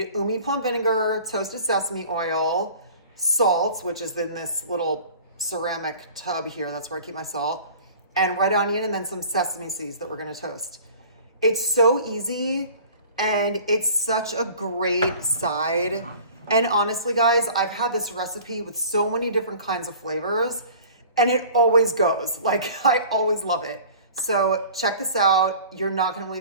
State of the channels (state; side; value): inverted; both; correlation -0.44